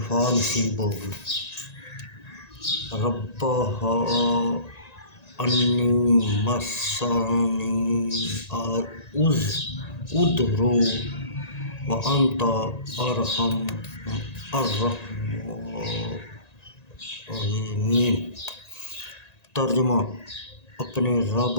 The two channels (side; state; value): right; late; 1.9 ms